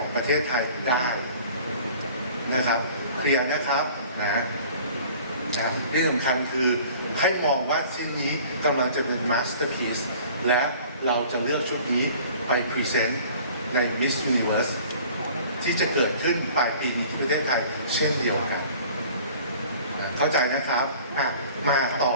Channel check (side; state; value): both; inverted; correlation -0.48